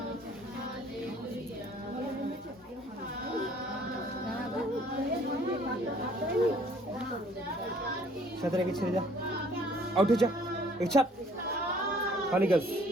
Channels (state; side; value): normal; both; correlation 0.57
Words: সাথে রেখে ছেড়ে যা, আউট হয়ে যা, ছাড় খালি গাছ।